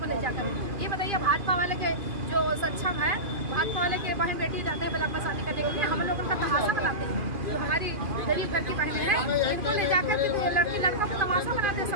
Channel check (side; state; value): left; late; 2.5 ms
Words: में ले जाकर। ये बताइए भाजपा वाले के जो सक्षम है, भाजपा वाले के बहन बेटी जाते हैं ब्लॉक में शादी करने के लिए, हम लोग उनका तमाशा बनाते हैं। जो हमारी गरीब घर की बहनें हैं, इनको ले जाकर के लड़की लड़का को तमाशा बनाते हैं।